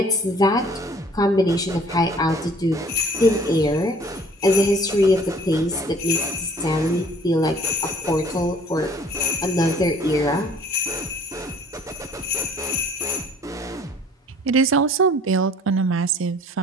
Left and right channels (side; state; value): both; normal; correlation 0.54